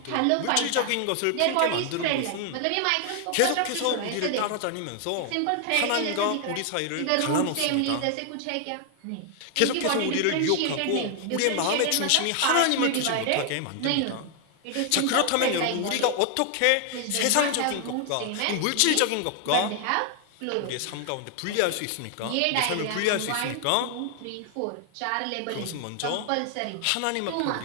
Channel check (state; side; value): different; both; correlation 0.00